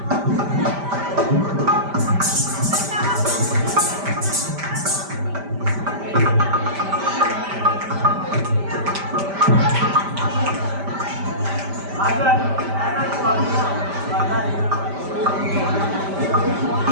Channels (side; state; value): left; late; 5.1 ms